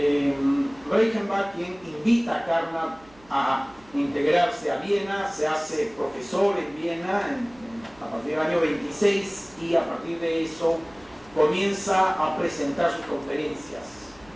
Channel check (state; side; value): noise; right; hum, 27 dB below the sound